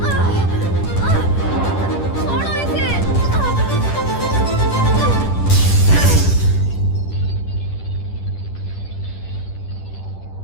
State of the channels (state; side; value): late; right; 10 ms